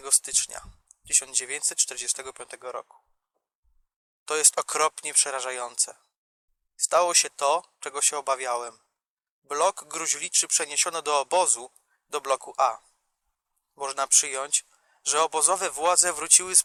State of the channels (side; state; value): both; identical; correlation 1.00